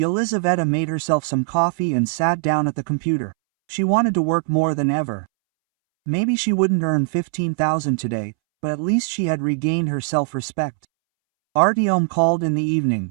made herself some coffee and sat down at the computer. She wanted to work more than ever. Maybe she wouldn't earn 15,000 today, but at least she had regained her self-respect. Artyom called in the evening.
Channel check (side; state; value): left; silent; 65 dB below the other